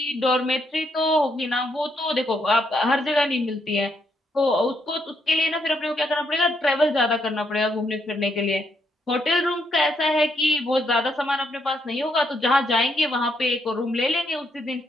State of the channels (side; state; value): both; normal; correlation 0.76